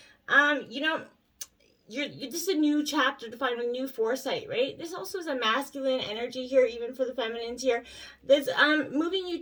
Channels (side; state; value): both; identical; correlation 1.00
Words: you know, this is a new chapter to find a new foresight, right? This also is a masculine energy here, even for the feminines here. That's moving you